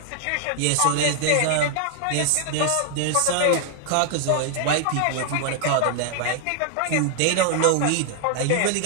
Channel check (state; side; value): different; both; correlation 0.00